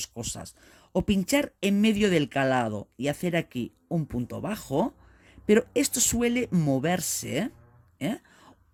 cosas. O pinchar en medio del calado y hacer aquí un punto bajo, pero esto suele moverse, ¿eh?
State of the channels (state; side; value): identical; both; correlation 1.00